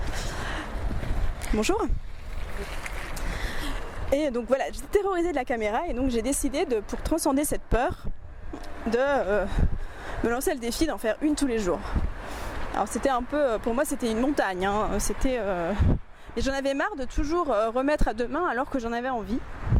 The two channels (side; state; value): both; identical; correlation 1.00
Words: Bonjour. Et donc voilà, j'étais terrorisée de la caméra, et donc j'ai décidé pour transcender cette peur, de me lancer le défi d'en faire une tous les jours. Alors c'était un peu, pour moi c'était une montagne, hein. Et j'en avais marre de toujours remettre à demain alors que j'en avais envie.